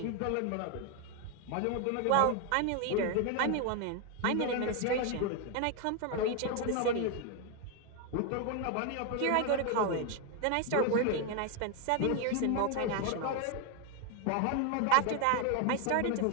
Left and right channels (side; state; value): both; different; correlation 0.01